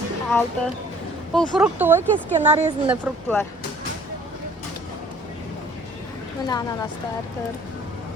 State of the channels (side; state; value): both; normal; correlation 0.54